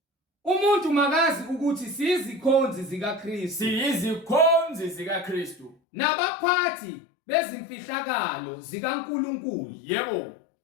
Umuntu makazi ukuthi siyizikhonzi zikaKristu. Siyizikhonzi zikaKristu. Nabaphathi bezimfihlakalo zikaNkulunkulu. Yebo.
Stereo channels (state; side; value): drops out; right; at 5.8 s